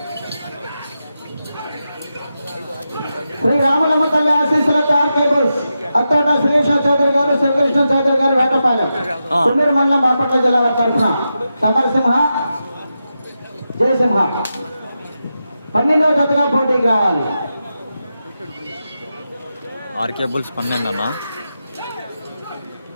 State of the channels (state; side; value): inverted; both; correlation -0.89